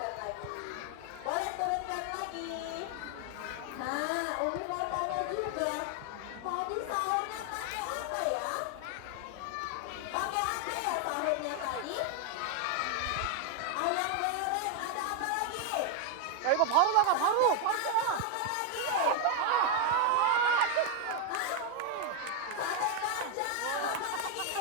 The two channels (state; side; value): different; both; correlation 0.01